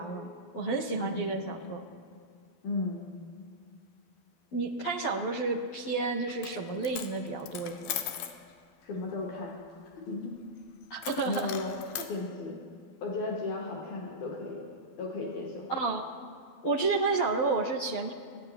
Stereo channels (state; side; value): late; right; 12 ms